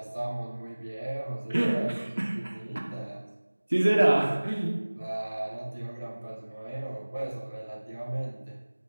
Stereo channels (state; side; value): inverted; both; correlation -1.00